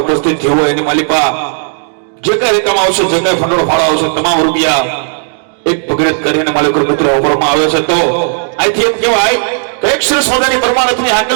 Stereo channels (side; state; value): left; silent; 70 dB below the other